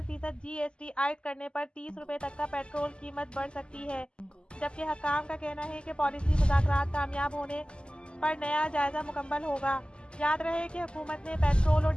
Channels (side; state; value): right; late; 0.050 ms